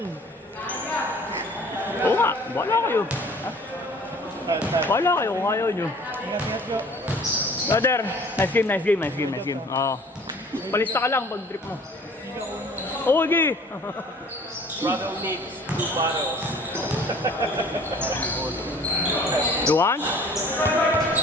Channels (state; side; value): normal; both; correlation 0.50